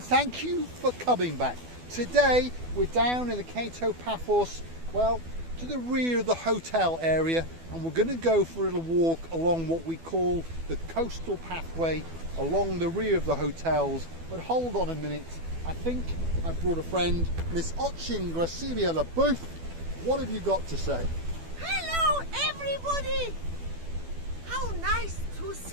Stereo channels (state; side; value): late; left; 12 ms